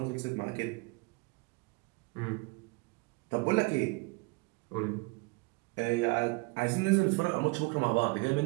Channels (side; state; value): left; quieter; 26.7 dB